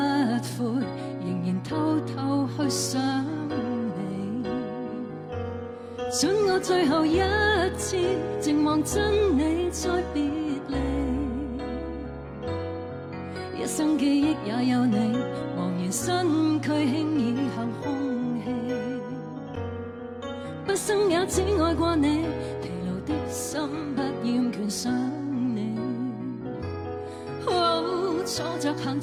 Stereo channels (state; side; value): identical; both; correlation 1.00